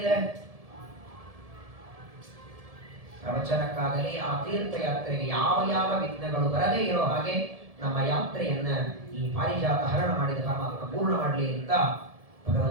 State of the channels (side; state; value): left; late; 1.7 ms